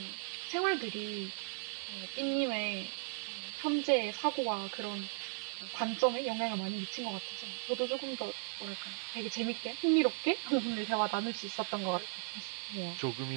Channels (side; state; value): left; silent; 53 dB below the other